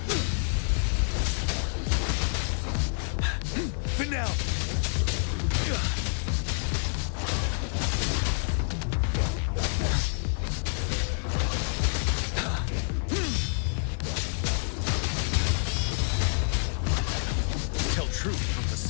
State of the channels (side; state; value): right; silent; digital silence